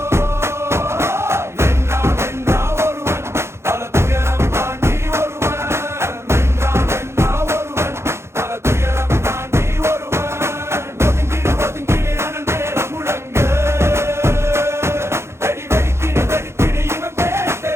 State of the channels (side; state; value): left; late; 0.13 ms